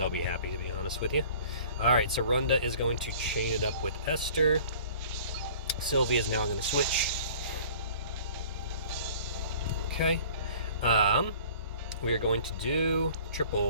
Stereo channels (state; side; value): inverted; both; correlation -0.48